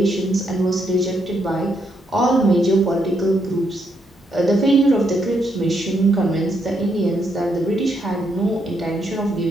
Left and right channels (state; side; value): normal; both; correlation 0.77